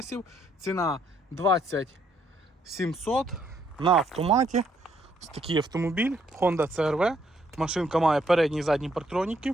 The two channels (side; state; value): both; normal; correlation 0.70